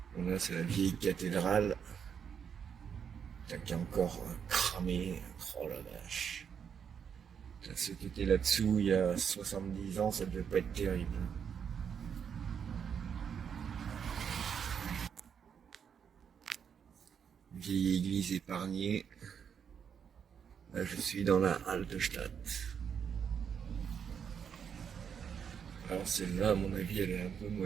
Là, c'est la vieille cathédrale. Qui est encore cramé. Oh la vache. Ce qui était là-dessous il y a 70 ans, ça devait pas être terrible. Vieille église épargnée. Là, je suis dans la Altstadt. Alors celle-là, à mon avis, elle est un peu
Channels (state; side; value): quieter; left; 7.4 dB